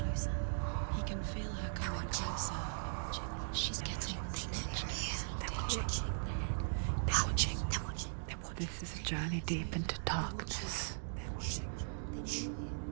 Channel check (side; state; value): left; silent; digital silence